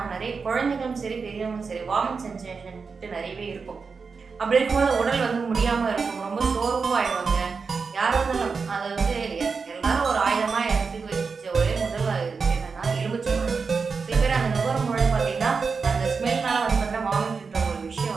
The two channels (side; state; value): left; quieter; 5.0 dB